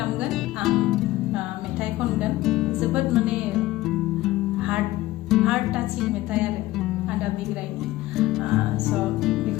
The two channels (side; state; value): right; quieter; 17.1 dB